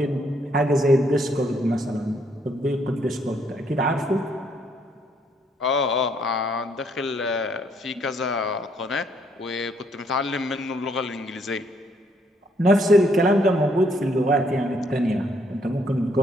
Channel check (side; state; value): both; normal; correlation 0.70